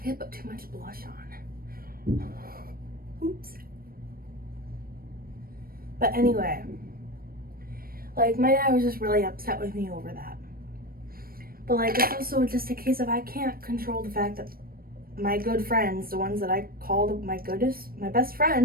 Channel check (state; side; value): late; left; 0.43 ms